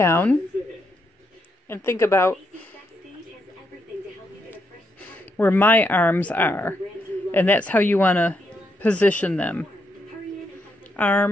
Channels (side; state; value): both; normal; correlation 0.79